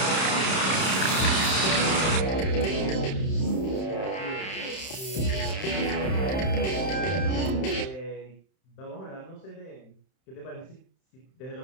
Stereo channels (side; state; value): right; late; 31 ms